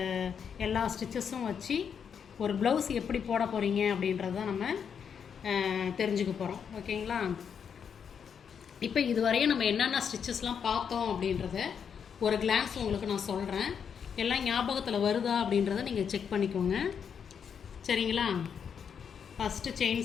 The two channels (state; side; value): quieter; right; 7.2 dB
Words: எல்லா ஸ்டிச்சஸும் வச்சு ஒரு ப்ளவுஸ் எப்படி போட போகிறீங்க அப்படின்றது தான் நம்ம தெரிஞ்சுக்க போகிறோம். ஓகேங்களா? இப்போ இதுவரையும் நம்ம என்னென்ன ஸ்டிச்சஸ்லாம் பார்த்தோம் அப்படின்றத ஒரு கிளான்ஸ் உங்களுக்கு நான் சொல்கிறேன். எல்லாம் ஞாபகத்தில் வருதா அப்படின்றத நீங்கள் செக் பண்ணிக்கோங்க. சரிங்களா? ஃபஸ்ட்டு செயின்